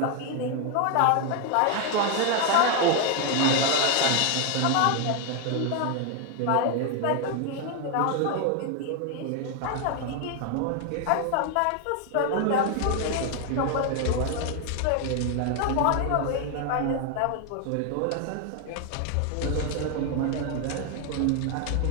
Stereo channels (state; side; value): different; both; correlation 0.01